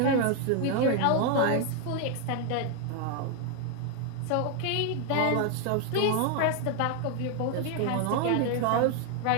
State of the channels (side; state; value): both; different; correlation 0.00